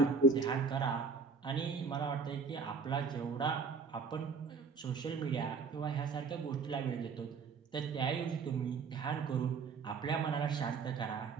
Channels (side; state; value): left; quieter; 4.9 dB